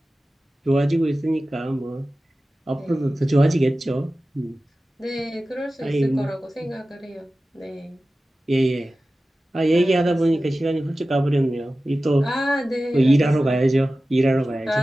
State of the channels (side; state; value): both; normal; correlation 0.95